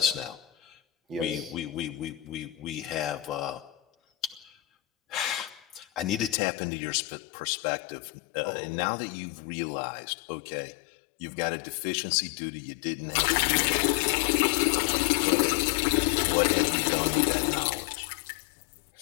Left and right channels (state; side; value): drops out; right; at 6.4 s